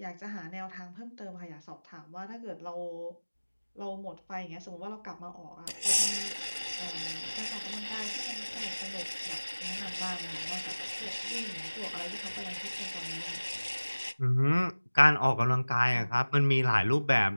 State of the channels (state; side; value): inverted; both; correlation -1.00